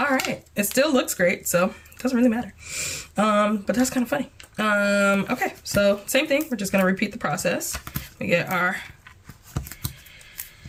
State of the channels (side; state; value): both; identical; correlation 1.00